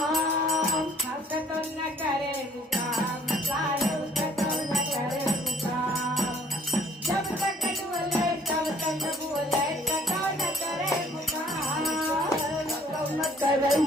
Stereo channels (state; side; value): normal; both; correlation 0.59